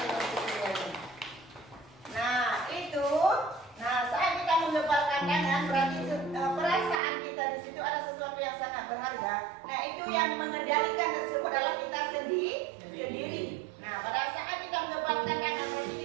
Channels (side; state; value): left; drops out; at 7.0 s